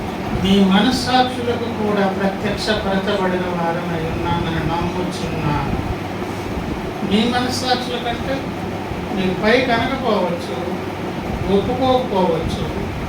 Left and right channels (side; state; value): both; identical; correlation 1.00